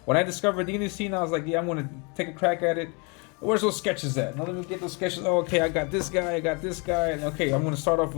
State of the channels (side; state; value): right; quieter; 32.3 dB